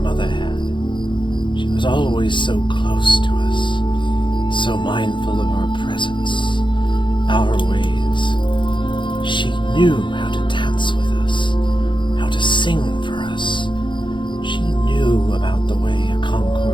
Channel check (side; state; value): right; late; 0.23 ms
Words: had. She was always so close to us, so mindful of our presence, our ways. She knew how to dance with us, how to sing for us. She knew about the way a